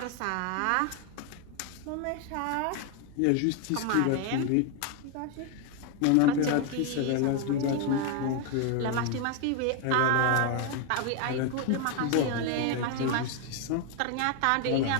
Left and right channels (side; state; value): both; different; correlation 0.01